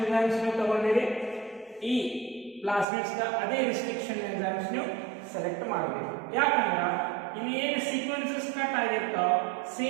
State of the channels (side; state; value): left; drops out; at 2.9 s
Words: ಎಂಜೈಮ್ಸ್ ನೀವು ತಗೊಂಡಿರಿ ಈ ಪ್ಲಾಸ್ಮಿಡ್ಸ್ ಅದೇ ರೆಸ್ಟ್ರಿಕ್ಷನ್ ಎಂಜೈಮ್ಸ್ ನೀವು ಸೆಲೆಕ್ಟ್ ಮಾಡಬೇಕು. ಯಾಕಂದ್ರೆ ಇಲ್ಲಿ ಏನು ಸೀಕ್ವೆನ್ಸಸ್ ಕಟ್ ಆಗಿರ್ತಾವ